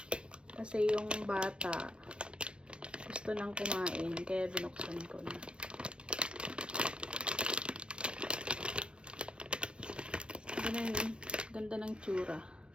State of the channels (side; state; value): left; late; 0.058 ms